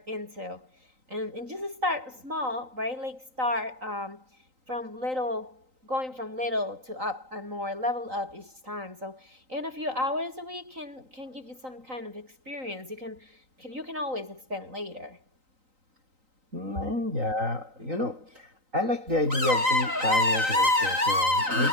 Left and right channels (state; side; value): late; left; 3.9 ms